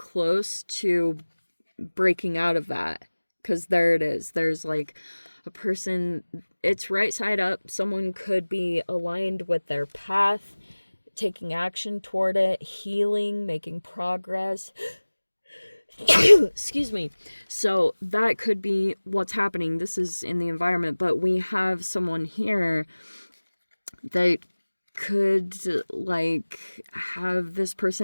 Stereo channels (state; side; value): inverted; both; correlation -1.00